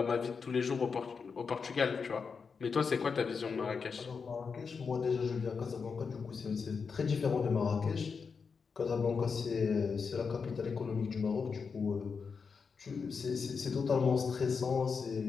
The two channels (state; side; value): quieter; right; 5.5 dB